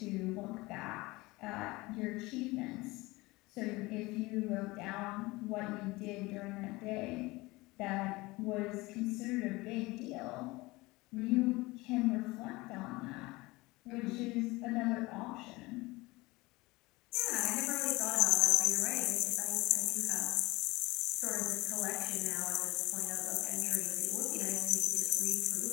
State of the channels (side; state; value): right; quieter; 21.8 dB